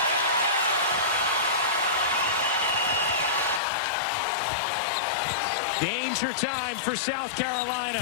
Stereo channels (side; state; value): right; drops out; at 3.6 s